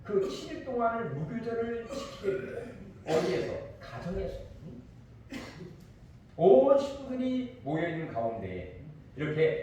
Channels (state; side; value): identical; both; correlation 1.00